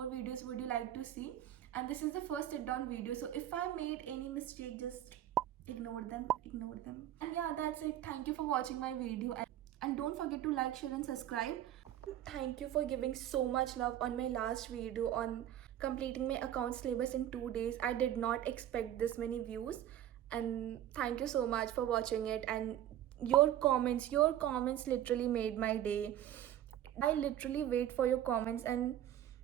videos would you like to see. And this is the first sit down video, so if I made any mistake, just ignore them. And yeah, that's it. Thank you for watching my video, and don't forget to like, share and subscribe. Thank you for giving so much love on my last video on completing my account syllabus in 2 days. I did not expect this many views, and thank you so much for watching it. And your comments literally made my day. I literally wait for your comments, and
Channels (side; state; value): left; quieter; 11.9 dB